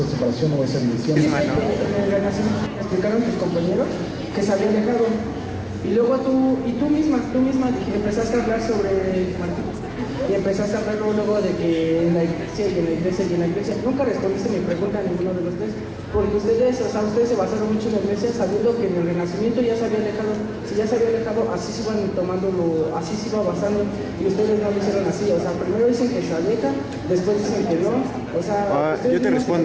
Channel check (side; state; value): both; identical; correlation 1.00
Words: separación o esa división. En el Renacimiento explicaron tus compañeros que se habían dejado, y luego tú misma empezaste a hablar sobre Martín, y empezaste a hablar luego de que en la iglesia y en la iglesia y en la iglesia. Nunca respondiste mi pregunta a ninguno de los tres, porque ustedes se basaron mucho en la iglesia, sabiendo que en el Renacimiento ya se había alejado. Si ya se había alejado, así se iban así se iba basando, y ustedes no lo hicieron así. O sea, primero dicen que se aleja, después dicen que no. O sea, yo te